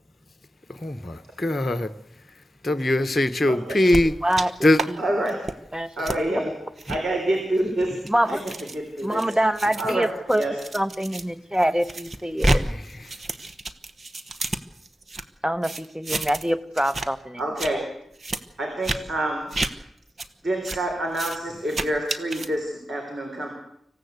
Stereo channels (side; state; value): both; normal; correlation 0.91